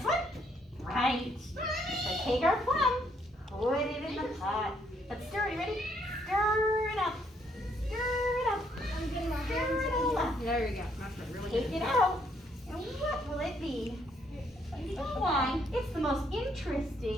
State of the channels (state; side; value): normal; both; correlation 0.70